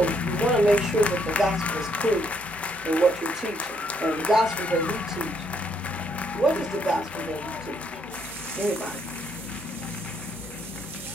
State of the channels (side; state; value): both; normal; correlation 0.71